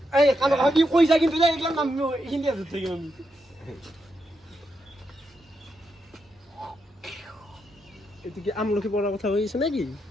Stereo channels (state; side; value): normal; both; correlation 0.83